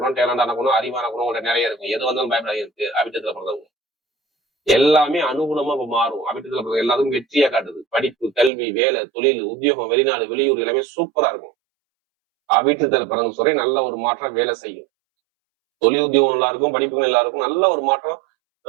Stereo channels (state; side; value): drops out; left; at 8.5 s